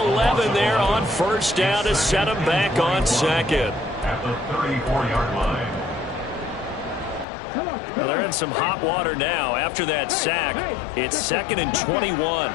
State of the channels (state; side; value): drops out; right; at 7.2 s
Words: there on first down to set him back on 2nd. At the 34-yard line. Well, they're in some hot water now. After that sack, it's 2nd and 21.